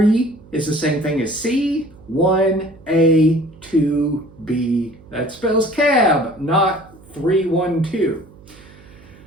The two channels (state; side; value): noise; right; hum, 23 dB below the sound